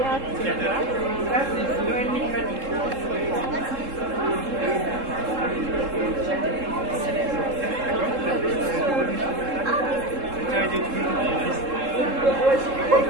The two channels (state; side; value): late; left; 3.7 ms